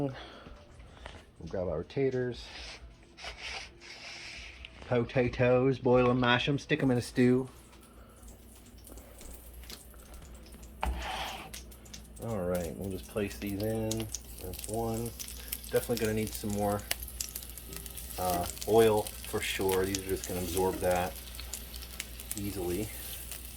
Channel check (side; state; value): both; identical; correlation 1.00